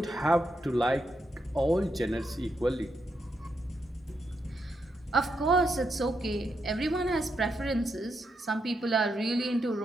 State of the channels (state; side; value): normal; both; correlation 0.82